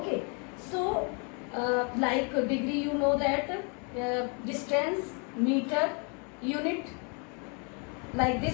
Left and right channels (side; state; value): right; quieter; 35.8 dB